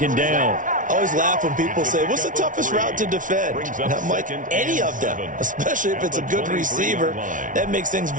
down. I always laugh when people say, what's the toughest route to defend? And I'm like, any of them, especially if it's a good receiver. That makes things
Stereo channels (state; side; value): late; left; 0.38 ms